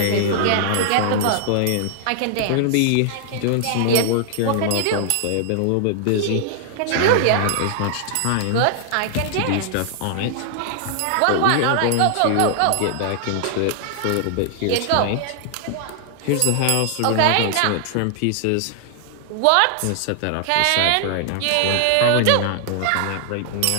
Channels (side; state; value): both; different; correlation -0.01